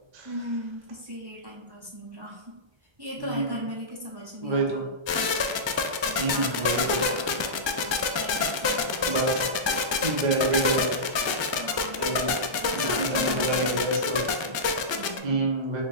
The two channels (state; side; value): late; left; 1.3 ms